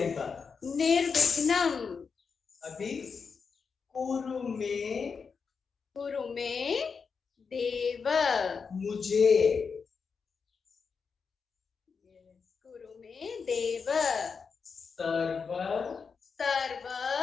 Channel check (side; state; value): right; quieter; 5.6 dB